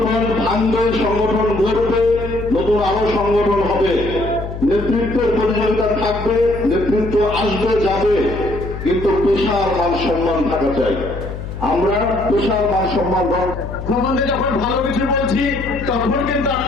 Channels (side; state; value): left; noise; hum, 8 dB below the sound